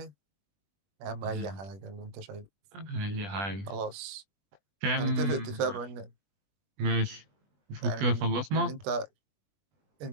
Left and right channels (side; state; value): left; late; 21 ms